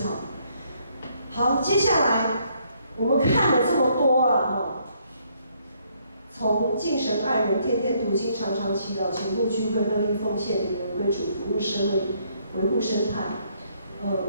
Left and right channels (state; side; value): inverted; both; correlation -0.70